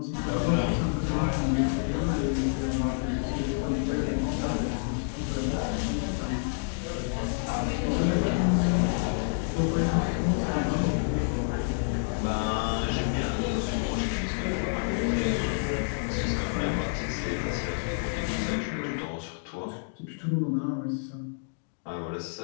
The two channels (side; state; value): right; silent; digital silence